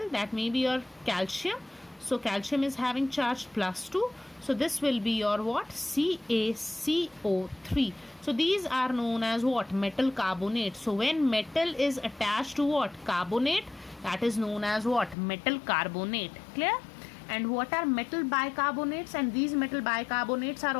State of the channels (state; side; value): drops out; right; at 15.2 s